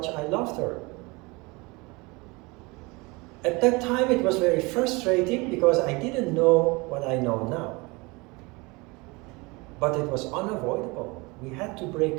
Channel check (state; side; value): quieter; left; 25.6 dB